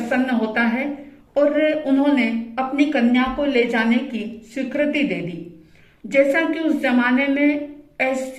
होता है और उन्होंने अपनी कन्या को ले जाने की स्वीकृति दे दी। जैसा कि उस जमाने में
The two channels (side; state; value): both; identical; correlation 1.00